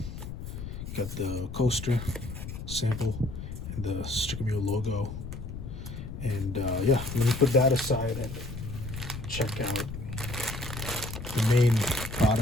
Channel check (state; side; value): noise; left; rumble, 8 dB below the sound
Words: got the coaster sample, and the Stickermule logo. And yeah, let me put that aside and check out the main